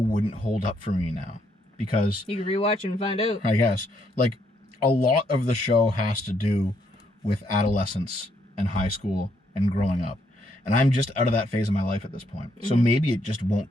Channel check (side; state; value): both; normal; correlation 0.74